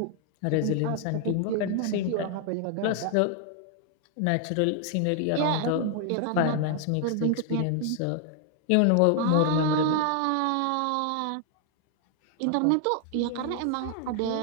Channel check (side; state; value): both; different; correlation 0.00